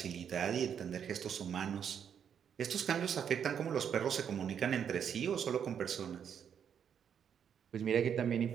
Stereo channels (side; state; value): left; quieter; 8.1 dB